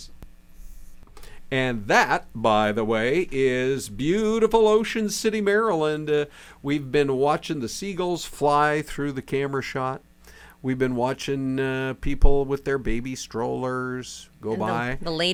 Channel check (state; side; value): identical; both; correlation 1.00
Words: And that, by the way, is beautiful Ocean City, Maryland. We've been watching the seagulls fly through the camera shot. We've been watching people with their baby strollers go by. The